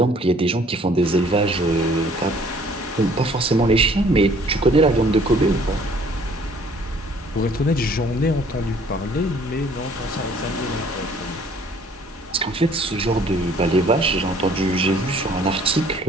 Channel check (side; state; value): both; normal; correlation 0.57